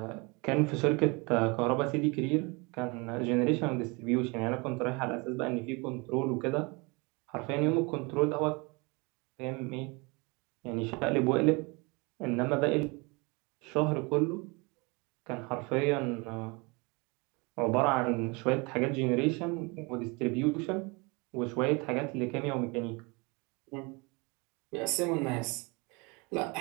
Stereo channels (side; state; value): left; quieter; 28.3 dB